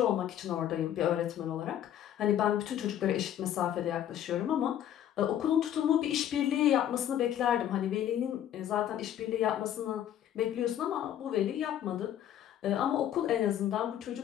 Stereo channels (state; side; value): quieter; right; 10.8 dB